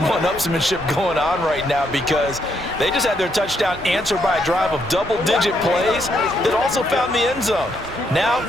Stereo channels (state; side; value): normal; both; correlation 0.75